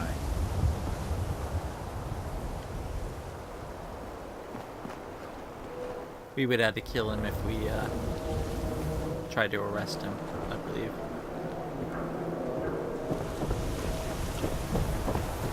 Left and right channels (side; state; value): both; identical; correlation 1.00